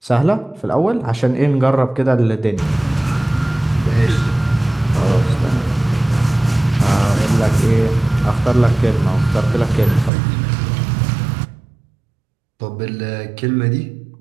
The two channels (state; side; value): drops out; left; at 10.1 s